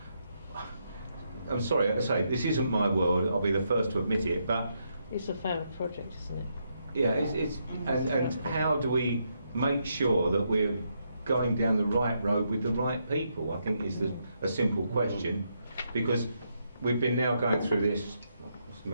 I'm sorry, I say this isn't my world. I'll be the first to admit it, but it's a failed project, isn't it? Yeah, and how do we make sure that we're going down the right road with the right people? I think is a simple question, because we've been now going through this.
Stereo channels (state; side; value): inverted; both; correlation -0.79